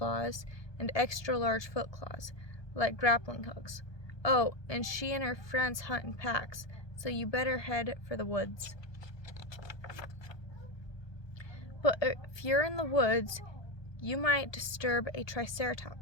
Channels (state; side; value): late; right; 1.2 ms